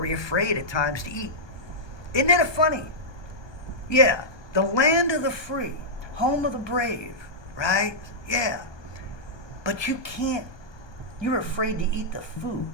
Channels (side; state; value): right; late; 1.2 ms